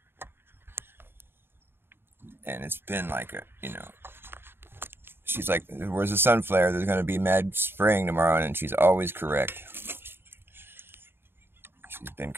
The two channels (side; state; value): left; late; 0.11 ms